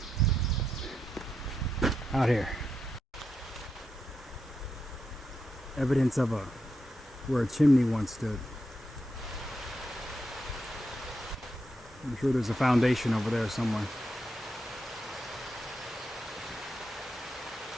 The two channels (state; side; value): normal; both; correlation 0.84